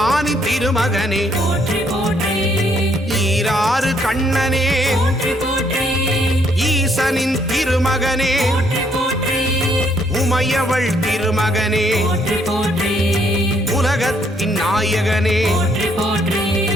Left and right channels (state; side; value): normal; both; correlation 0.69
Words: திருமகனே போற்றி போற்றி ஈராறு கண்ணனே போற்றி போற்றி ஈசனின் திருமகனே போற்றி போற்றி உமையவள் திருமகனே போற்றி போற்றி உலகத்தின் நாயகனே போற்றி போற்றி